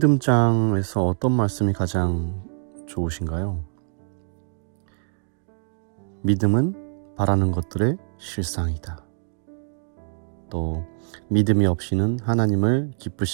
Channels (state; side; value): silent; left; digital silence